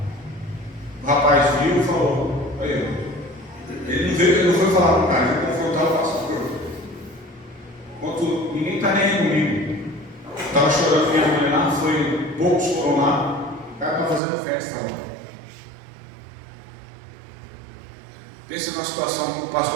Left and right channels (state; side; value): drops out; left; at 14.2 s